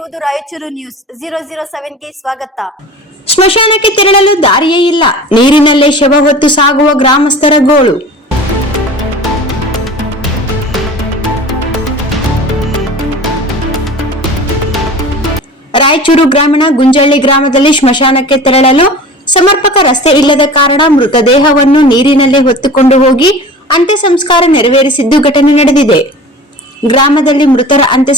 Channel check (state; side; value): normal; both; correlation 0.39